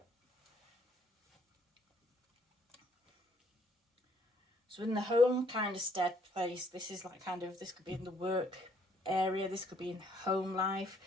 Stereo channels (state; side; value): normal; both; correlation 0.65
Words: So in the home kind of stead place, this is this could be in the work area. This could be in home life.